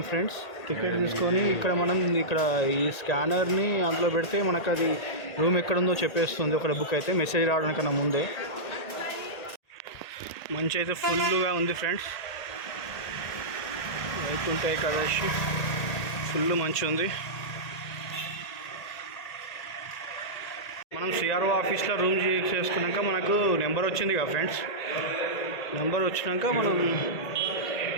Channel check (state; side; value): late; right; 1.8 ms